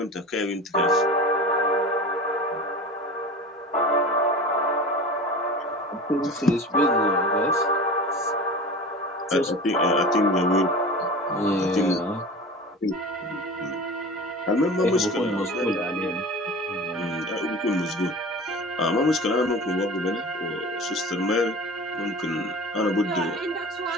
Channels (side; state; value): both; normal; correlation 0.35